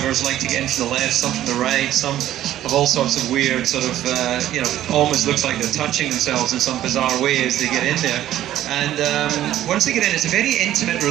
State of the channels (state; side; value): quieter; left; 12.8 dB